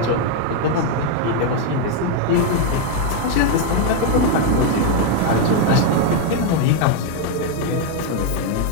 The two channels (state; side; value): different; both; correlation 0.01